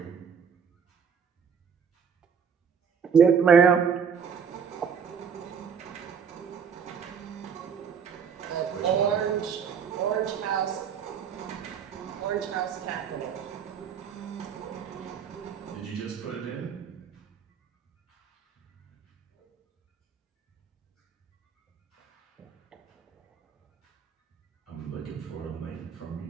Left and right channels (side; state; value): left; quieter; 6.8 dB